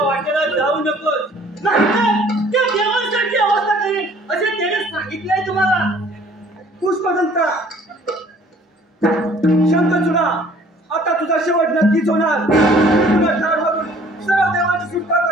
वाटेला जाऊ नकोस, नाहीतर त्या देवांसारखी अवस्था करेल असे त्याने सांगितलंय तुम्हाला. पुष्पदंता शंकरचूडा आता तुझा शेवट नक्कीच होणार. तुला ठार मारून सर्व देवाची सुटका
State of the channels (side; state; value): both; normal; correlation 0.55